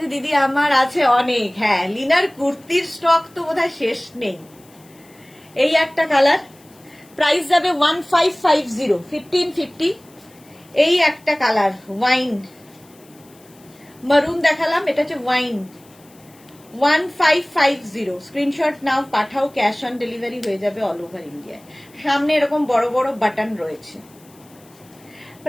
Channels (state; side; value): noise; left; hiss, 28 dB below the sound